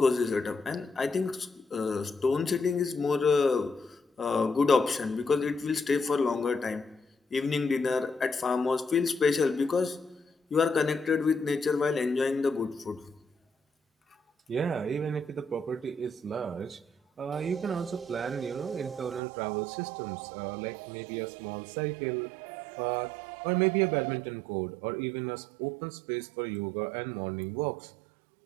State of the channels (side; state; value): left; drops out; at 19.2 s